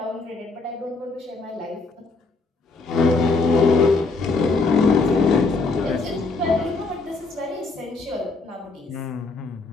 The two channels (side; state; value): right; quieter; 3.8 dB